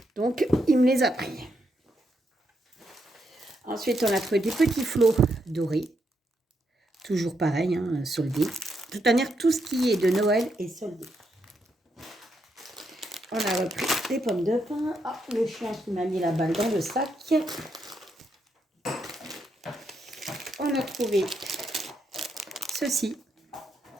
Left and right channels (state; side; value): normal; both; correlation 0.80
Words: Donc, il me les a pris. Ensuite, on a trouvé des petits flots dorés. Toujours pareil, hein, soldés. De toute manière, tout ce qui est de Noël est soldé. On a repris des pommes de pin. Ah, le chien qui m'a mis la balle dans le sac. On a trouvé ceci.